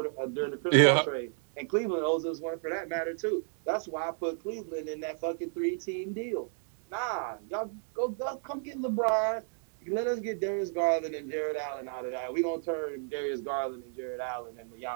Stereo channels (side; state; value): left; silent; 56 dB below the other